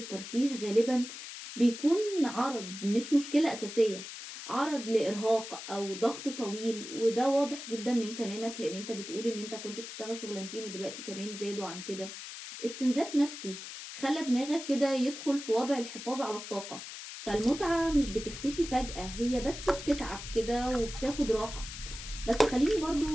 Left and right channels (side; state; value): left; noise; hiss, 10 dB below the sound